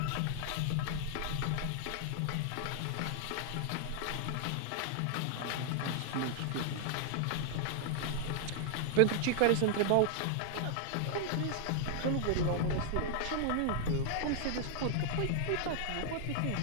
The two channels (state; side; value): different; both; correlation 0.00